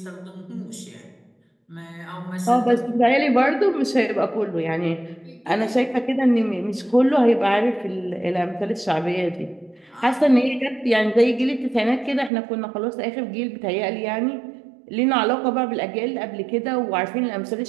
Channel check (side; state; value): left; drops out; at 12.3 s